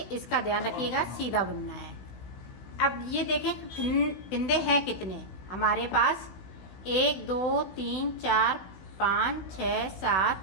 इसका ध्यान रखिएगा, सीधा बुनना है। अब ये देखें फिंदे हैं कितने हमारे पास, 1 2 3 4 5, 6,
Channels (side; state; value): right; late; 16 ms